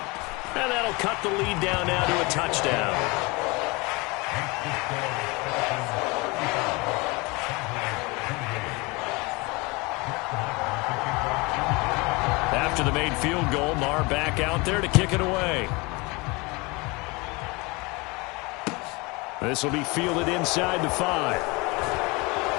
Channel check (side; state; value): right; quieter; 25.9 dB